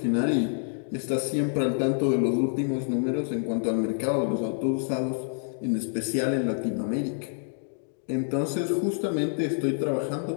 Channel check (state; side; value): silent; right; digital silence